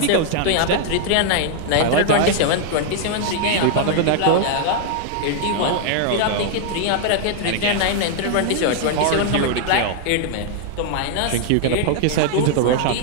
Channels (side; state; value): both; different; correlation 0.00